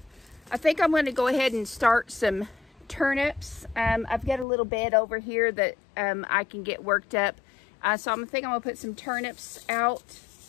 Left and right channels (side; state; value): right; drops out; at 4.5 s